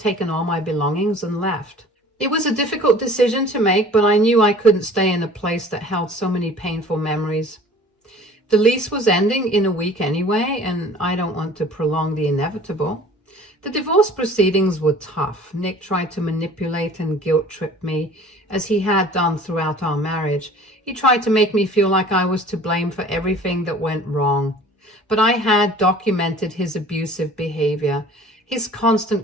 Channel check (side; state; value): both; normal; correlation 0.47